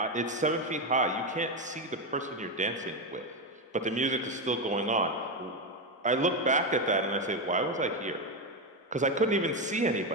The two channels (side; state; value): both; normal; correlation 0.10